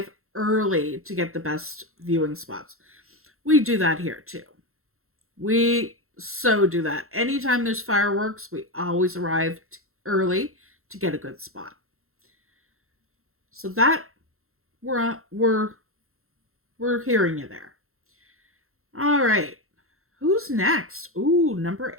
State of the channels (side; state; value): left; late; 0.62 ms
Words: early to get the best viewing spots. We do that here too. We so do that. Anytime there's fireworks, we always arrive early to get a good spot. So that we're hearing you there. All right. Who's next? Ooh, number